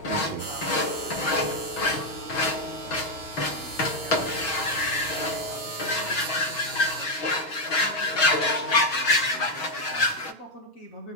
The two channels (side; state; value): right; late; 6.2 ms